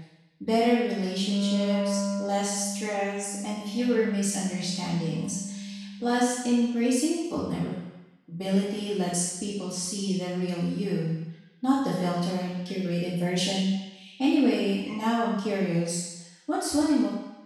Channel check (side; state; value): both; identical; correlation 1.00